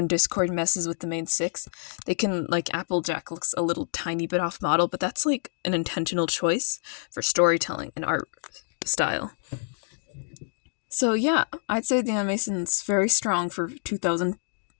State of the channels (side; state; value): right; silent; digital silence